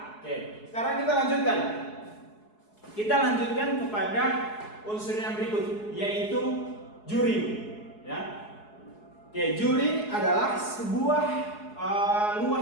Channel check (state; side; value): late; right; 4.7 ms